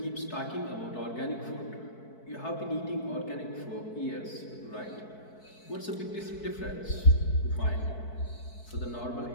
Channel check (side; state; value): right; late; 4.6 ms